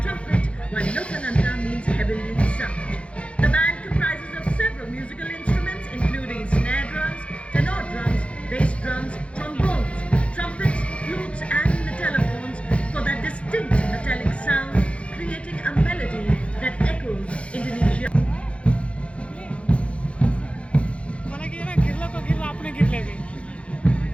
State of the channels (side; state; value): right; late; 0.061 ms